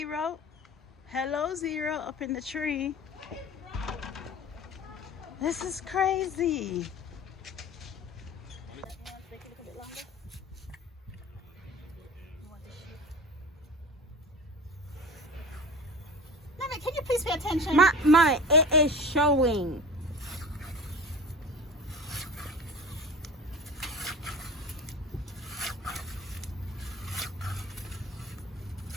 up in the tree. This is crazy. Mommy, can you please pay attention? Mommy, it is showing.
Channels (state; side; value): normal; both; correlation 0.36